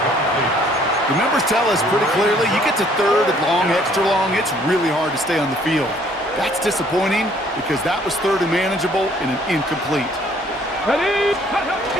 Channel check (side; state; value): both; normal; correlation 0.61